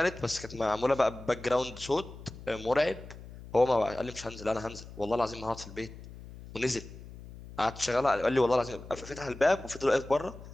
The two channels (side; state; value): left; noise; hum, 15 dB below the sound